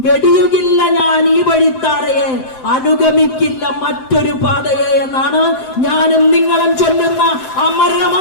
വെടിയുകില്ല ഞാൻ ഈ വഴിത്താരയെ, അനുഗമിക്കില്ല മറ്റൊരു പാതയെ എന്നാണ് ഞാനും നിങ്ങളും ചൊല്ലുന്ന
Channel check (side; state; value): right; late; 7.8 ms